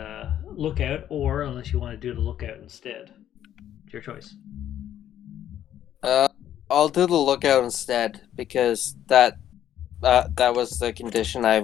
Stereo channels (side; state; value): right; quieter; 11.1 dB